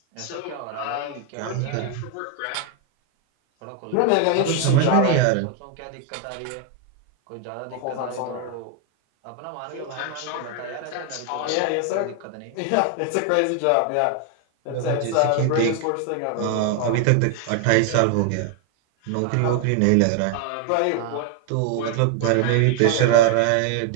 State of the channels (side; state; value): both; different; correlation 0.01